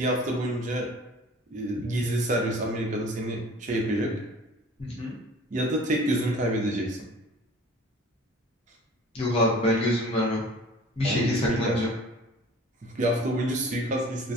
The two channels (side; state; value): both; normal; correlation 0.46